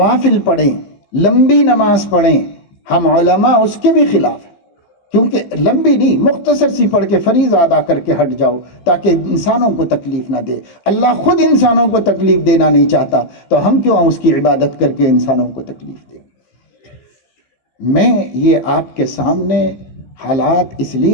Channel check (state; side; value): late; right; 15 ms